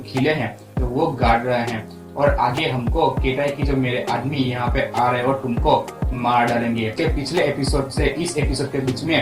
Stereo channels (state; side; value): identical; both; correlation 1.00